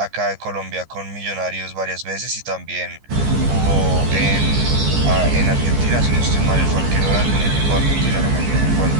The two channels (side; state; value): left; late; 14 ms